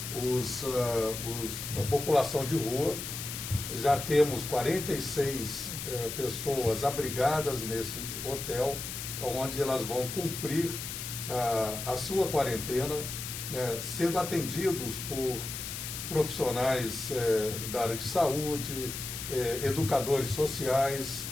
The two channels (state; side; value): noise; left; hiss, 6 dB below the sound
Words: a população de rua. Já temos 46 pessoas abrigadas nesse hotel, onde elas vão cumprir a sua quarentena, sendo atendidos por profissionais da área de saúde, educadores sociais